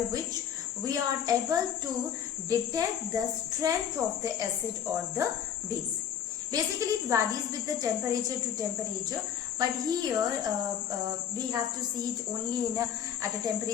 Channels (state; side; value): quieter; right; 8.9 dB